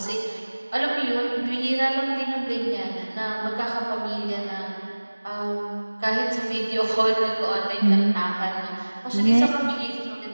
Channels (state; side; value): inverted; both; correlation -1.00